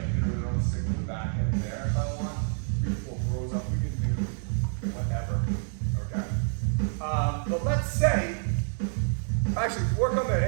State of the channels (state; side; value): silent; left; digital silence